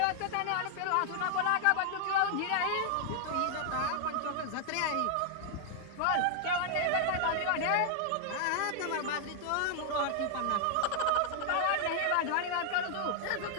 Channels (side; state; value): both; different; correlation 0.00